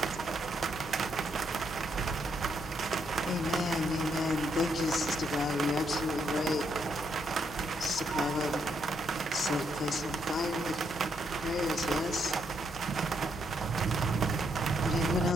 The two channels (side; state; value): both; normal; correlation 0.76